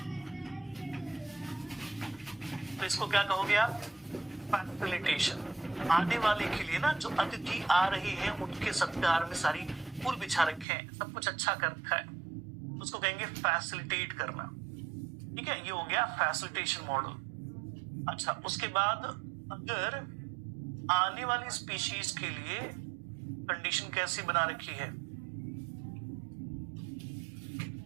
तो इसको क्या कहोगे आप, फैसिलिटेशन। आने वाले के लिए ना, जो अतिथि आ रहे हैं उनके सत्कार में सारी फूल बिछा रखे हैं, सब कुछ अच्छा कर रखा है, उसको कहेंगे फैसिलिटेट करना। ठीक है, ये हो गया फैसिलिटेशन मॉडल। अच्छा, उसके बाद अगर आने वाली स्पीशीज के लिए कंडीशन कैसी बना रखी है,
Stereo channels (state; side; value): drops out; left; at 10.7 s